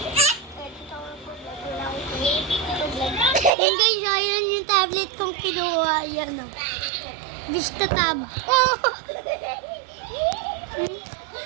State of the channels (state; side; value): drops out; left; at 3.5 s